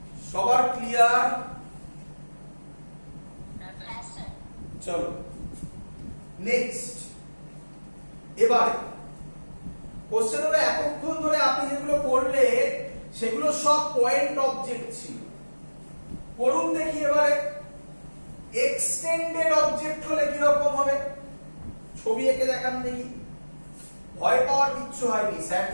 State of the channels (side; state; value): both; inverted; correlation -1.00